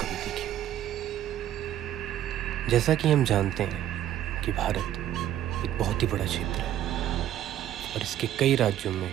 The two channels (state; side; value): quieter; left; 11.8 dB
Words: देखी होगी। जैसा कि हम जानते हैं कि भारत एक बहुत ही बड़ा क्षेत्र है और इसके कई राज्यों में